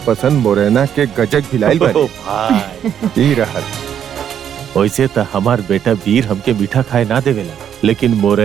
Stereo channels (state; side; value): quieter; left; 9.1 dB